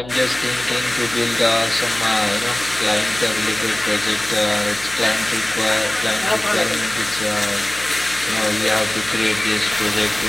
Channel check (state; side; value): noise; left; hum, 16 dB below the sound